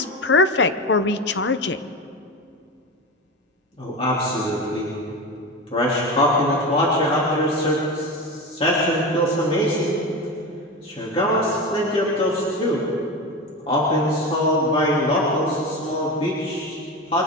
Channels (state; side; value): normal; both; correlation 0.23